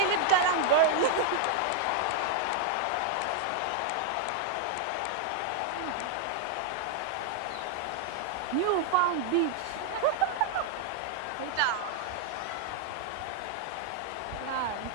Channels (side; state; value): both; different; correlation 0.00